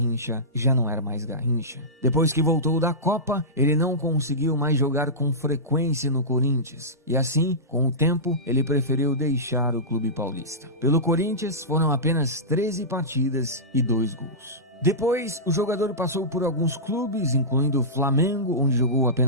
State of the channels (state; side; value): normal; both; correlation -0.16